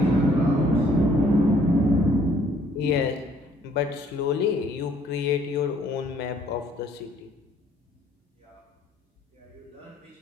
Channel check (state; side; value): normal; both; correlation 0.62